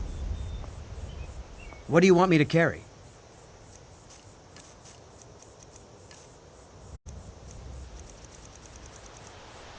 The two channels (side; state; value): both; identical; correlation 1.00